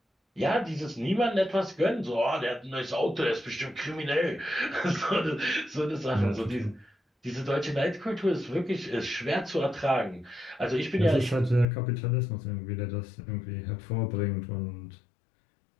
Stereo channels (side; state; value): right; drops out; at 11.7 s